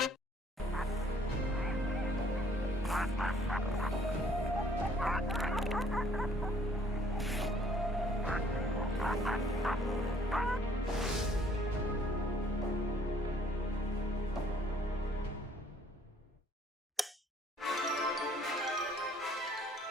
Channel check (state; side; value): normal; both; correlation 0.61